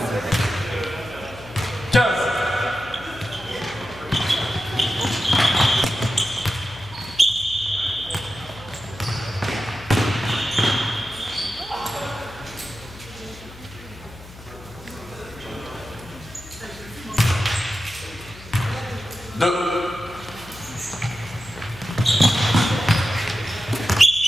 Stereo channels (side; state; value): left; noise; hum, 18 dB below the sound